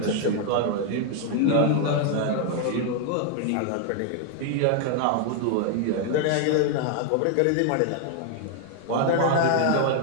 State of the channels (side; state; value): both; different; correlation 0.00